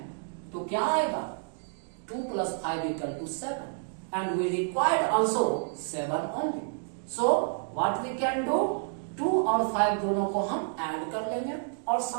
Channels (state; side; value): silent; left; digital silence